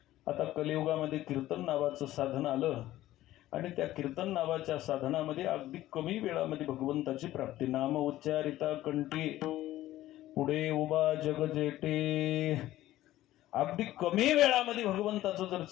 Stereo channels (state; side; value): quieter; right; 14.9 dB